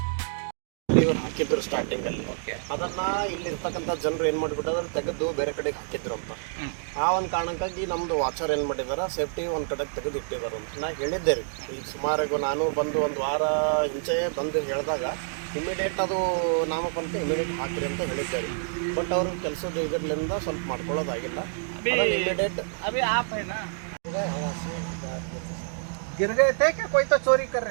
ಇವರು ಹಾಕಿದ್ರು ಸ್ಟಾರ್ಟಿಂಗ್ ಅಲ್ಲಿ, ಅದನ್ನ ಇಲ್ಲಿ ಇರ್ತಕ್ಕಂಥ ಜನರು ಏನ್ ಮಾಡ್ಬಿಟ್ಟದ್ರ ತೆಗೆದು ಬೇರೆ ಕಡೆಗೆ ಹಾಕಿದ್ರು ಅಂತ. ಆ ಒಂದು ಕಾರಣಕ್ಕಾಗಿ ನಮ್ದು ವಾಚರ್ ಏನ್ ಮಾಡಿದಾರ ಸೇಫ್ಟಿ ಒಂದ್ ಕಡೆಗೆ ತೆಗೆದು ಇಟ್ಟಿದಾರ ಅಂತ ನಾ ಹೇಳಿದ್ದೆ ರೀ. ಈಗ ಸುಮಾರು ನಾನು ಬಂದು ಒಂದು ವಾರ ಹಿಂಚೆ ಬಂದು ಹೇಳಿದಾಗ ಇಮಿಡಿಯೇಟ್ ಅದು ನಾಮಫಲಕ ಇಮಿಡಿಯೇಟ್ ಹಾಕ್ರಿ ಅಂತ ಹೇಳಿದ್ದೆ ರೀ. ಬಟ್ ಅವರು ಕೆಲಸದ ಇದರ್ಲಿಂದ ಸ್ವಲ್ಪ ಮಾಡ್ಕೊಳ್ಳೋದಾಗಿಲ್ಲ. ಇಮಿಡಿಯೇಟ್ अभी आप है ना, गिर गए थे क्या? कोई तो चोरी कर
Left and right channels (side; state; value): left; silent; digital silence